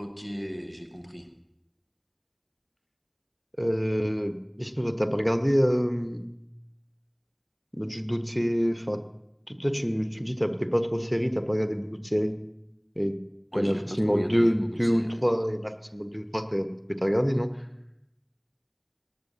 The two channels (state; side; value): identical; both; correlation 1.00